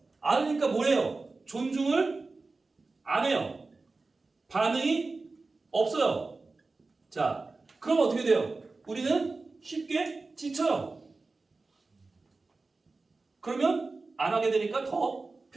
알으니까 뭐래요? 존중을 안 해요. 반응이 없어요. 자, 그럼 어떻게 돼요? 우리는 쉽게 지쳐요. 그러면 안 하게 되니까 더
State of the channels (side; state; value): left; quieter; 3.7 dB